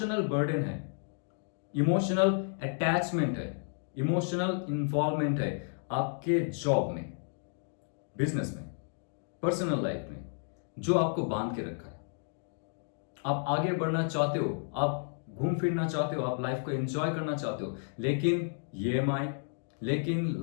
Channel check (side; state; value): right; silent; digital silence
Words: बर्डन है, इमोशनल अटैचमेंट है, इमोशनल इन्वॉल्वमेंट है आपके जॉब में, बिजनेस में, पर्सनल लाइफ में, जो आपको बांध के रखा है। आप आगे बढ़ना चाहते हो, आप घूम फिरना चाहते हो, आप लाइफ को एंजॉय करना चाहते हो, लेकिन EMI, लेकिन